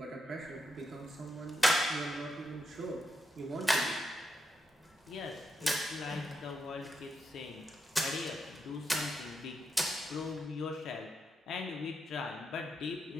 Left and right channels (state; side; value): normal; both; correlation 0.82